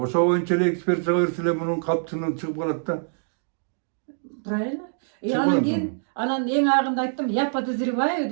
боюнча эле экспертизага берсе эле мунун калптыгынан чыгып калат да. Правильно. Анан кийин анан эң агында айттым, я подозреваю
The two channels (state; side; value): silent; left; digital silence